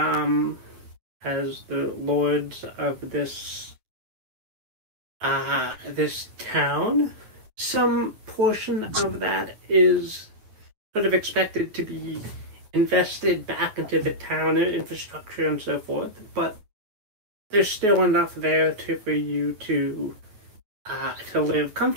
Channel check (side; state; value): left; late; 9.4 ms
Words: lords of this town. Some portion of that is sort of expected to be invested back into the town infrastructure and so forth, but there's still enough there for you to live